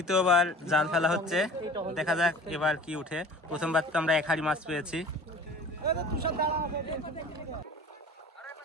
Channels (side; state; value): both; normal; correlation 0.43